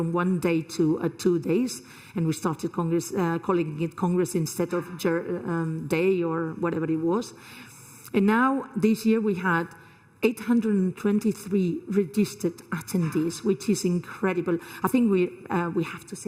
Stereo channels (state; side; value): identical; both; correlation 1.00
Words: 1 day to 2 days, and we started Congress, calling it Congress instead of day or whatever it was. And now this year we had 823 registered attendees, which is incredible. I think we have to